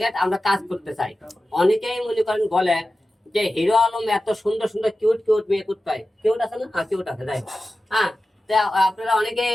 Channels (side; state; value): both; normal; correlation 0.94